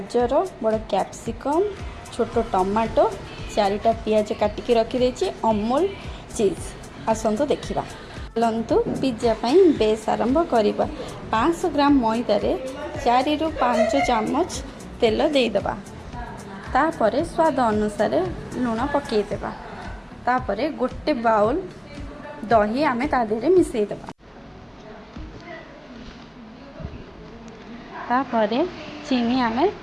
बड़ कैप्सिकम, छोट टमाटो, 4टा पियाज काटिकी रखी, अमूल चीज। आसतु देखिबा। चलतु पिज्जा पाई बेस आरंभ करिबा। 500 ग्राम मैदार 4 ରୁ 5 चामच तेल देदेबा। तापरे स्वाद अनुसार लुण पकईदेबा। तापरे गोटे बाउल दही आमे ता देहरे मिसईदेबा। तापरे चीनी आमे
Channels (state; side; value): identical; both; correlation 1.00